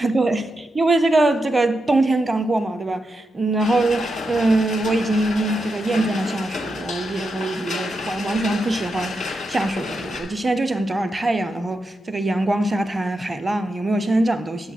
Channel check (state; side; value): normal; both; correlation 0.87